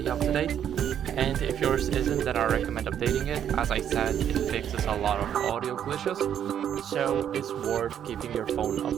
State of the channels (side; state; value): left; quieter; 9.4 dB